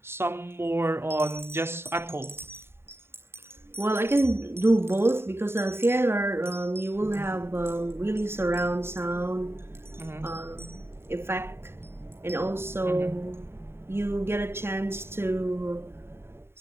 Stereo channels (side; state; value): left; late; 0.12 ms